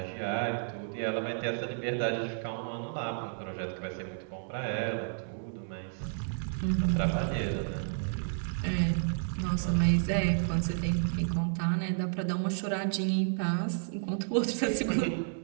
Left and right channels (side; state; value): left; silent; digital silence